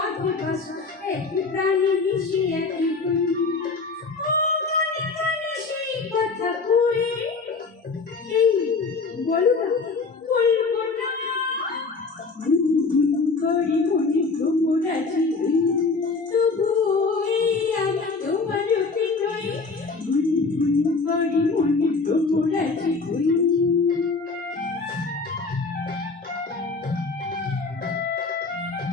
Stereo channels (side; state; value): right; quieter; 4.2 dB